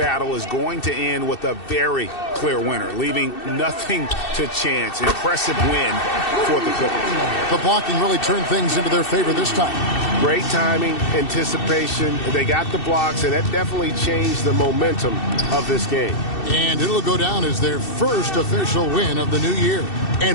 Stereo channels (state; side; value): late; right; 2.7 ms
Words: is going to end with a very clear winner, leaving nothing to chance. Impressive win for the Clippers. The blocking really turned things into their favor this time. Great timing, anticipation. They got the blocks, and that definitely changed the momentum of this game. And it'll go down as their first official win of the new year.